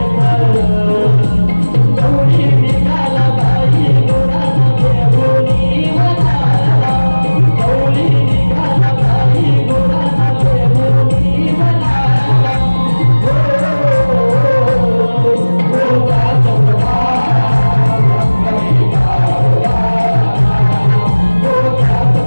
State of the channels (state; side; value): inverted; both; correlation -1.00